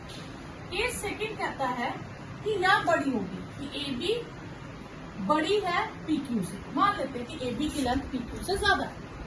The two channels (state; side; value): identical; both; correlation 1.00